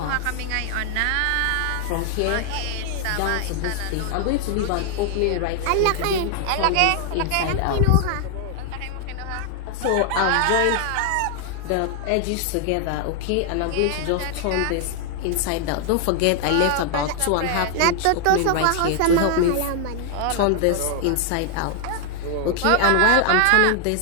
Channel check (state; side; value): different; both; correlation 0.00